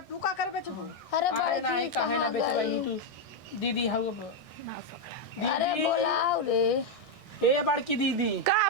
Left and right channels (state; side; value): late; right; 1.6 ms